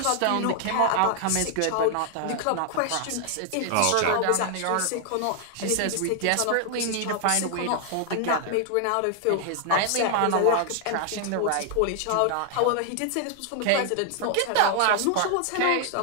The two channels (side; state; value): both; different; correlation 0.00